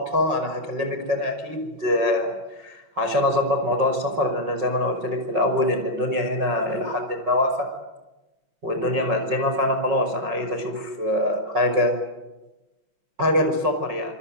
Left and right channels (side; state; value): left; late; 5.5 ms